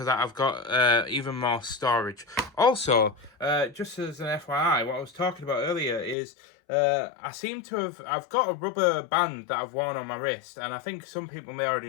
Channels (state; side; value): drops out; right; at 6.2 s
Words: that I've got even more storage. Also, just as an FYI, what I was talking about earlier is I've got a rubber band that I've worn on my wrist, and I think some people may already